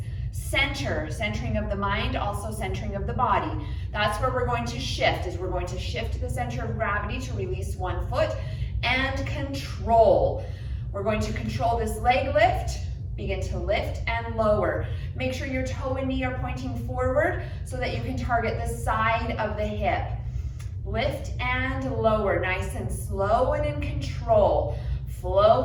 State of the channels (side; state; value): both; identical; correlation 1.00